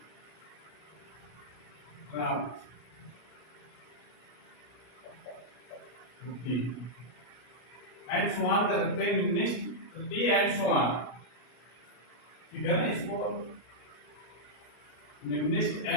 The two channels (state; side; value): late; right; 33 ms